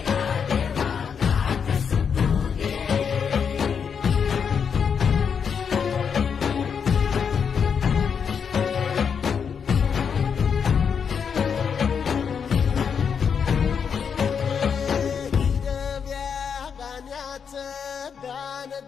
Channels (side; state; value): right; quieter; 6.8 dB